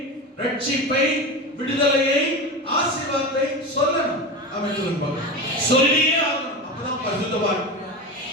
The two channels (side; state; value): both; normal; correlation 0.25